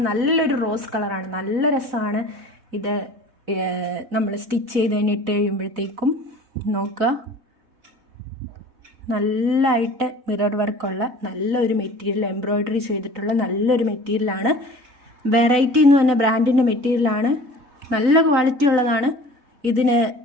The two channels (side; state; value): left; late; 3.5 ms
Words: നല്ലൊരു റോസ് കളറാണ്. നല്ല രസമാണ് ഇത്. നമ്മൾ സ്റ്റിച്ച് ചെയ്ത് കഴിഞ്ഞിട്ട് കഴിയുമ്പോഴത്തേക്കും നോക്കുക, നല്ലതായിട്ട് മിറർ വർക്കുള്ള നല്ലൊരു മെറ്റീരിയൽ, എംബ്രോയിഡറി ചെയ്തിട്ടുള്ള നല്ലൊരു മെറ്റീരിയലാണ്. വെറൈറ്റി എന്ന് പറഞ്ഞ ബ്രാൻഡിൻ്റെ മെറ്റീരിയലാണ്. നല്ല ക്വാളിറ്റി ഉള്ളതാണ്. ഇതിന്